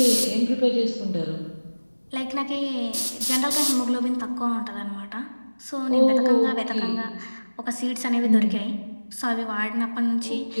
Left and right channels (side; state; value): both; inverted; correlation -1.00